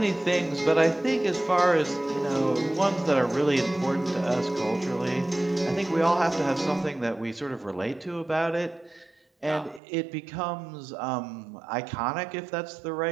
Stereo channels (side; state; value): left; drops out; at 9.8 s